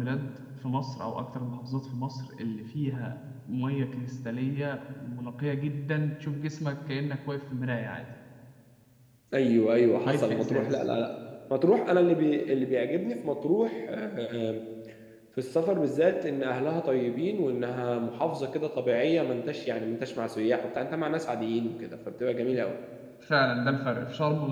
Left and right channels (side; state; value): both; identical; correlation 1.00